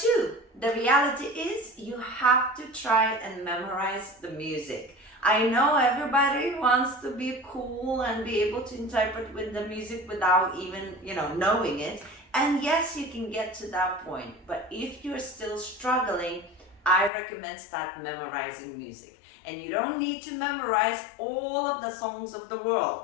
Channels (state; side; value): drops out; right; at 17.1 s